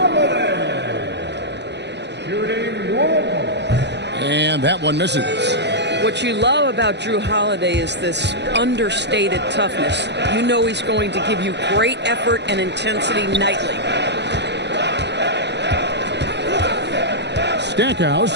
Shooting 1. And that one misses. What you love about Drew Holiday is this understated toughness. You know he's going to give you great effort and intensity nightly.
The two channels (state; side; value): late; left; 0.50 ms